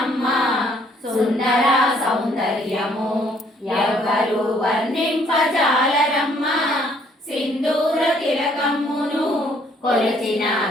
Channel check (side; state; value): both; normal; correlation 0.64